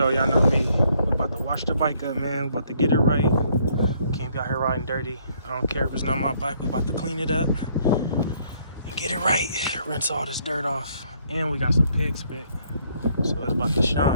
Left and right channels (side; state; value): both; inverted; correlation -0.67